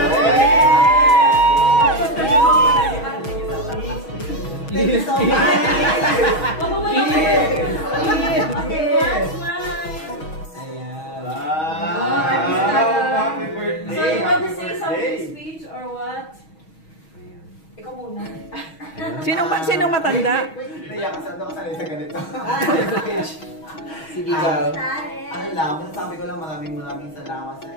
you so much. Happy birthday. So you want to say something speech or what? Ikaw muna. Sinong matanda? Naiyak kasi ako sanay sa ganito. Sige, girl. Ano lang, sabi ko lang maraming salamat sa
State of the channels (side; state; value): right; late; 6.3 ms